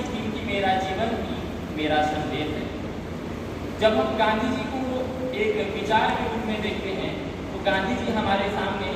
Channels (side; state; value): both; identical; correlation 1.00